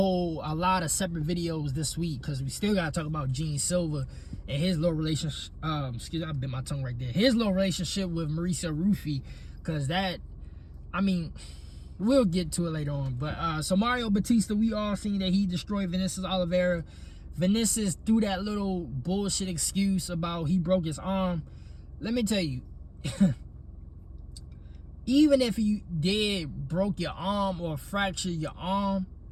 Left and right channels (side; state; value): both; identical; correlation 1.00